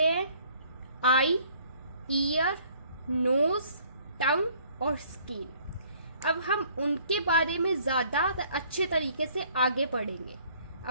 हैं आई, ईयर, नोज, टंग और स्किन. अब हम उनके बारे में ज्यादा अच्छे तरीके से आगे पढ़ेंगे.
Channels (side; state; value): both; inverted; correlation -0.59